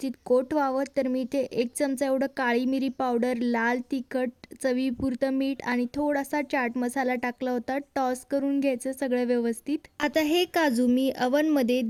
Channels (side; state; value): both; identical; correlation 1.00